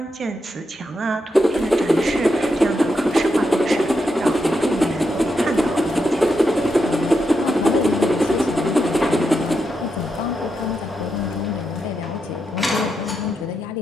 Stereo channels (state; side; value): normal; both; correlation 0.84